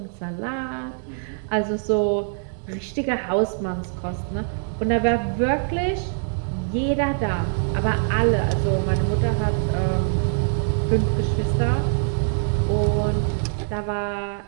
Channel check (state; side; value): silent; left; digital silence